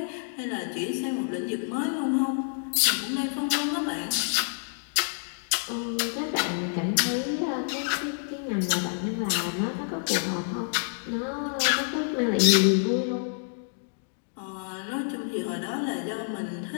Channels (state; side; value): silent; right; digital silence